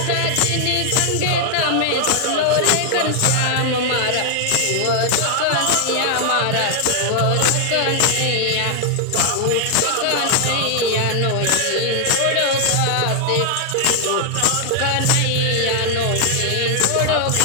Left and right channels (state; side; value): different; both; correlation 0.00